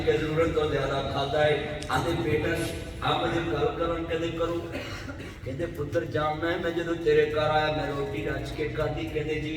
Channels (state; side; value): identical; both; correlation 1.00